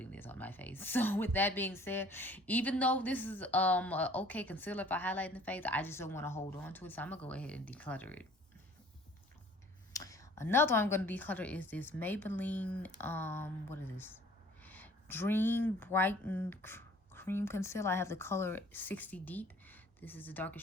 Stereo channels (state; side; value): normal; both; correlation 0.53